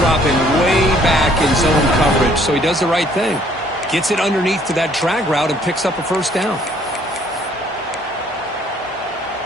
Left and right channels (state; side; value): normal; both; correlation 0.62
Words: way back in zone coverage, so he does the right thing. Gets it underneath to that drag route and picks up a first down.